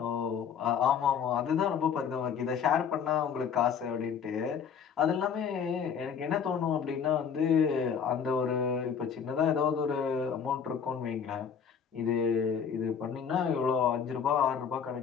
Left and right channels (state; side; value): quieter; right; 7.1 dB